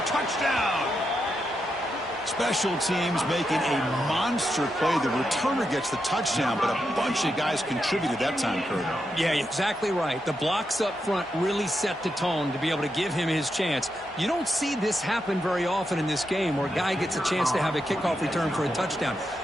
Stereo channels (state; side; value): normal; both; correlation 0.85